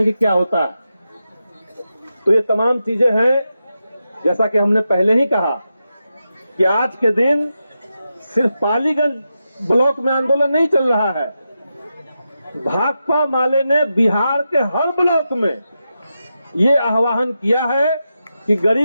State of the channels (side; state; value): both; inverted; correlation -0.88